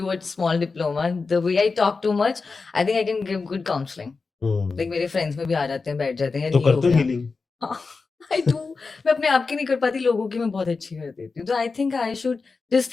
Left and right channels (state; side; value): quieter; right; 4.4 dB